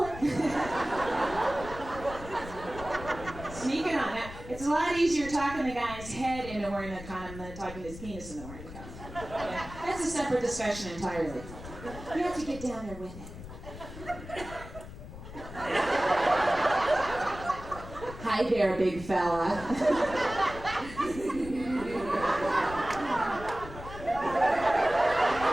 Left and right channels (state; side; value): noise; left; rumble, 13 dB below the sound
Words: it. Sneak it on. Now, it's a lot easier talking the guy's head into wearing a condom than talking his penis into wearing a condom. Yeah, that's a separate discussion entirely. You have to get down there with it. Hi there, big fella.